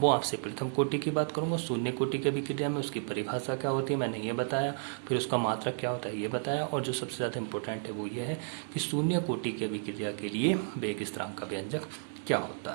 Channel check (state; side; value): silent; left; 56 dB below the other